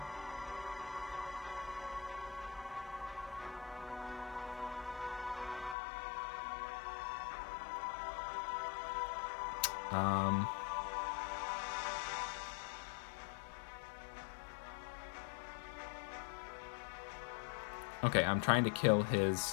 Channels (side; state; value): right; drops out; at 5.8 s